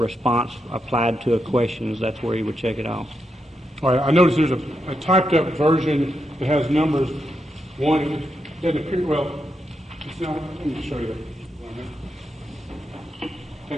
applied to a question, that's where he would check it off. All right. I noticed there's a typed up version that has numbers. One, it doesn't appear, well, it's not, let me just show you that.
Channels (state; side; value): normal; both; correlation 0.83